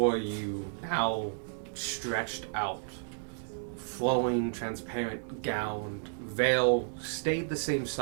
you, now stretched out, flowing, transparent gown, veil stayed the same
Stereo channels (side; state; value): left; silent; 56 dB below the other